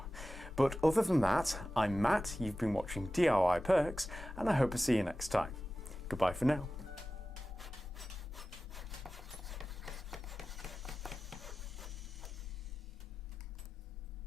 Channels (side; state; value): both; normal; correlation 0.95